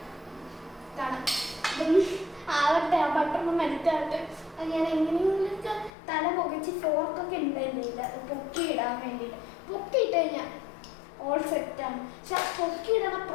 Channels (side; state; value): right; drops out; at 5.9 s